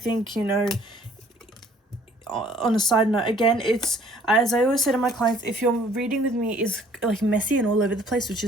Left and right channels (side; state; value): both; normal; correlation 0.58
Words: you know, on a side note, again, it's, as I always say to my clients, if your reading with me is like messy and all over the place, which